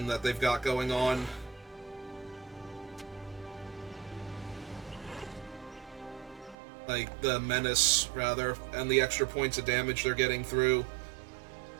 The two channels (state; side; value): drops out; left; at 6.6 s